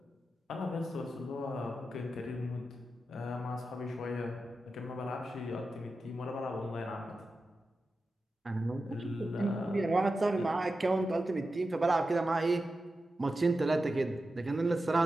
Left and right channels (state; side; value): normal; both; correlation 0.91